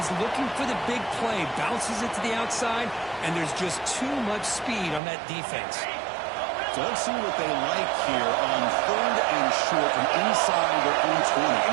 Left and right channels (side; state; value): left; drops out; at 5.0 s